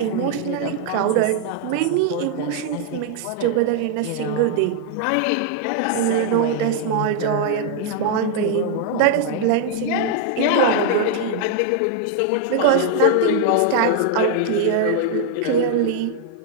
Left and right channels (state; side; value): different; both; correlation 0.00